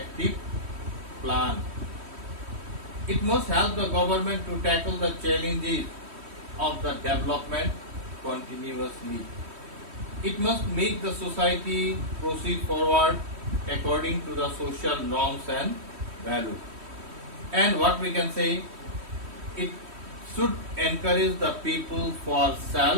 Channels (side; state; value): left; late; 3.1 ms